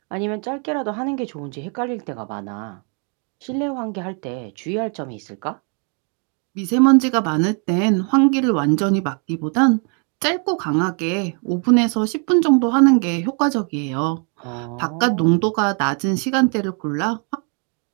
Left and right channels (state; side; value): quieter; left; 39.0 dB